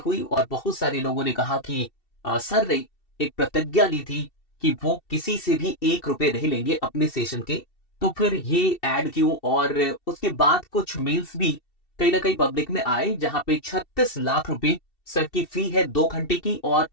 और बहुत सारे लोगों ने कहा कि सर ने एक प्रतिज्ञा ली थी कि वो किसी से भी 1 रुपए नहीं लेंगे अपने सेशन के, तो फिर ये एड क्यों। और उसके बाद कुछ मेल्स भी कहीं ना कहीं पब्लिक में आए जहां पे 36 लाख रुपए सर की फी है 2 घंटे की, और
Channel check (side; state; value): right; late; 2.7 ms